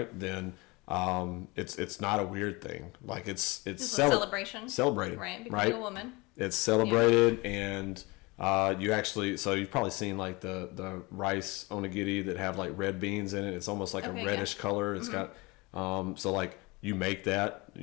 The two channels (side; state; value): right; quieter; 24.8 dB